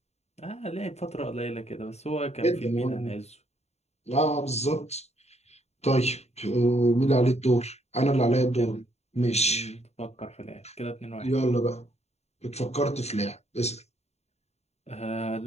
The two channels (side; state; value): right; late; 0.31 ms